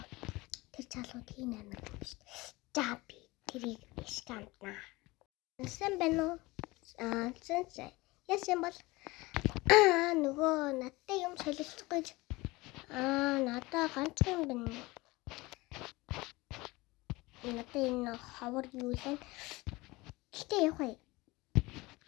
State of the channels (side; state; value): right; quieter; 21.9 dB